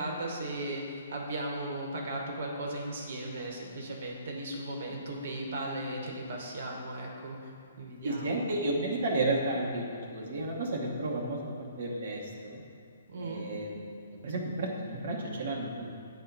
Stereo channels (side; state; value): both; inverted; correlation -0.56